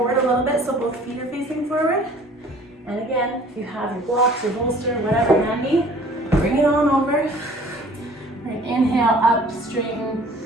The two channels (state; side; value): normal; both; correlation 0.51